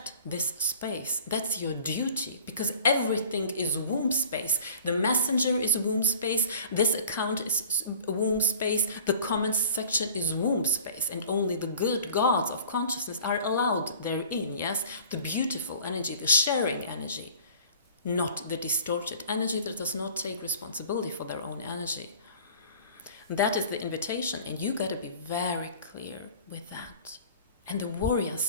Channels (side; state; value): both; inverted; correlation -0.46